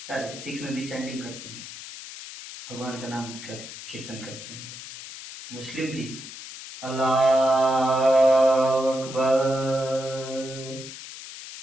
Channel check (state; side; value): noise; left; hiss, 12 dB below the sound